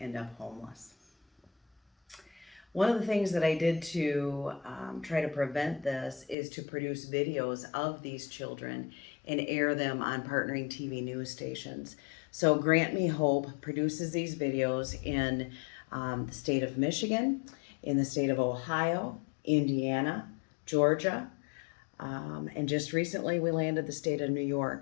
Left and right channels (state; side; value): drops out; right; at 6.4 s